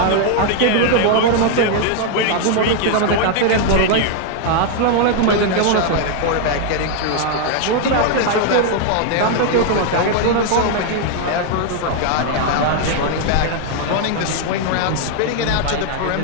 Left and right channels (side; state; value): both; different; correlation 0.00